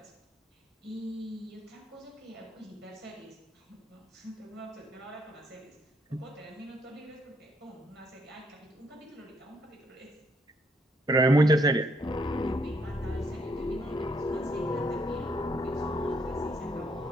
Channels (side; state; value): both; normal; correlation 0.72